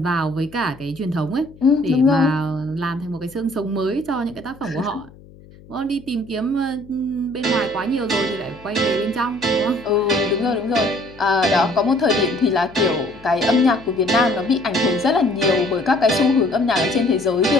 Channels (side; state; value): left; noise; hum, 22 dB below the sound